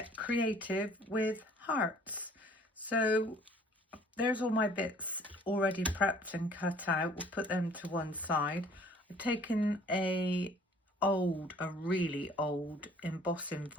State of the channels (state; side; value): normal; both; correlation 0.54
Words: creative with hearts. So there's all my bits already prepped and cut out. We'll put them to one side. I've taken a really old embossing